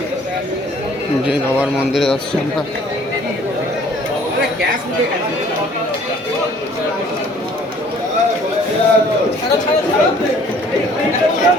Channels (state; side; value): normal; both; correlation 0.56